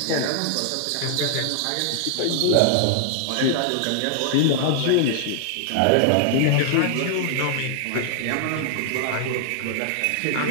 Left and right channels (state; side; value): different; both; correlation 0.00